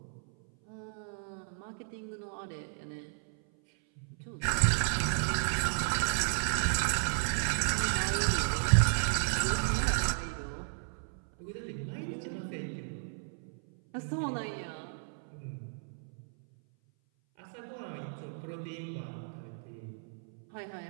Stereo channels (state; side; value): silent; left; 55 dB below the other